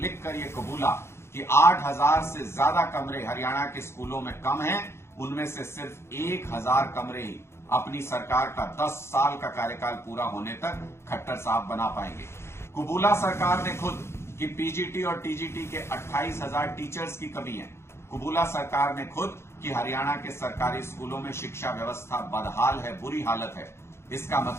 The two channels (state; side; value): late; right; 0.12 ms